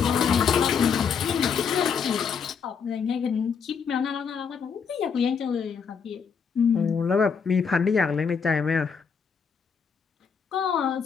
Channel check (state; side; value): quieter; right; 6.2 dB